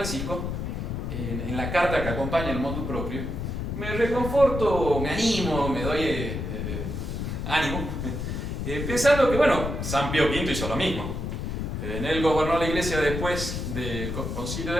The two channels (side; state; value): left; noise; rumble, 4 dB below the sound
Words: en la carta que acompaña el motu proprio, me reconforto, me animo, me doy ánimo, pensando que, bueno, San Pío V hizo lo mismo. Él gobernó la Iglesia después del Concilio